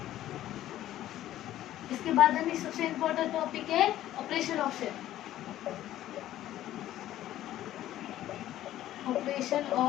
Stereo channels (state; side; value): quieter; right; 13.3 dB